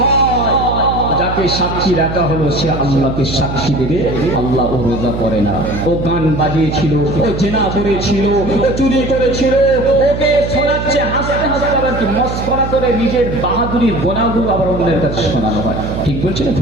যাকে সাক্ষী রাখা হলো সে আল্লাহকে সাক্ষী দেবে, আল্লাহ ও রোজা করে না, ও গান বাজিয়েছিল, ও জেনা করেছিল, ও চুরি করেছিল, ওকে শোনাচ্ছে হাসতে হাসতে, আবার কি মস্করা করে নিজের বাহাদুরির গোনাগুলো আবার অন্যের কাছে শোনানো হয়। ঠিক বলছে না?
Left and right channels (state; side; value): noise; right; hum, 6 dB below the sound